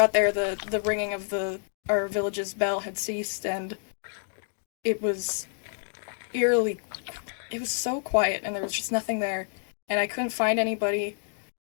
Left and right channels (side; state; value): right; silent; digital silence